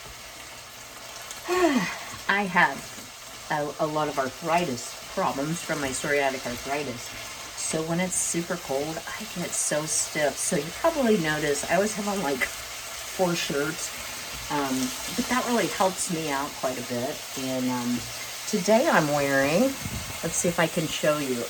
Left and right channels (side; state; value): both; identical; correlation 1.00